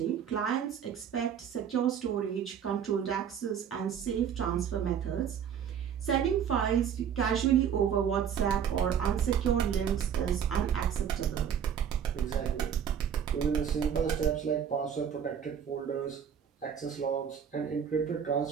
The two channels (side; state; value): left; quieter; 8.2 dB